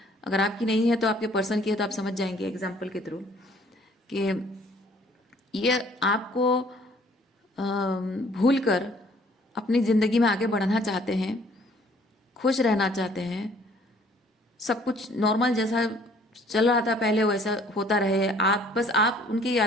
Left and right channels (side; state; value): both; normal; correlation 0.58